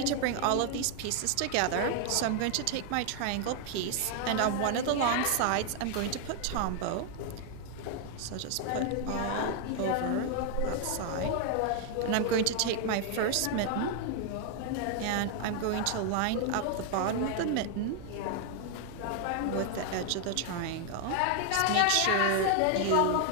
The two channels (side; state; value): both; different; correlation 0.00